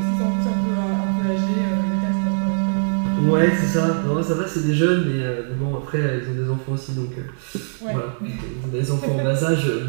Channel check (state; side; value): silent; left; 64 dB below the other